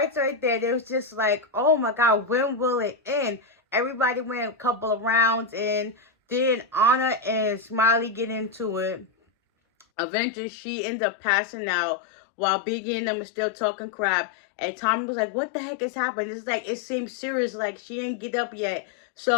right there. It was just like, oh my God, when will it end? Everybody went a couple of rounds and then Anna and Smiley get into it. Eventually, she ends up passing out while Biggie and them are still talking crap. And Tommy was like, what the heck is happening? It's like, it seems serious. Like, she ain't get up yet.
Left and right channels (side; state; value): right; drops out; at 9.9 s